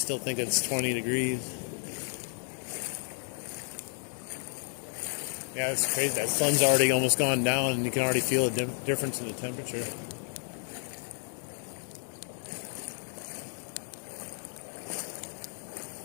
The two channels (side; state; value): right; silent; 57 dB below the other